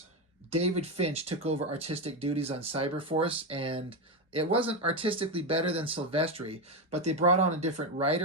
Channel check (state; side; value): normal; both; correlation 0.11